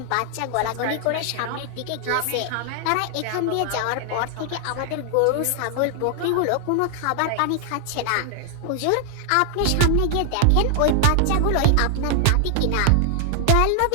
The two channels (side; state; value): both; different; correlation 0.00